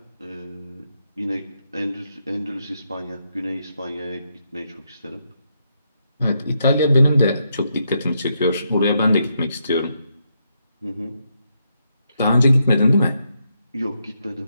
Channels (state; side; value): inverted; both; correlation -0.80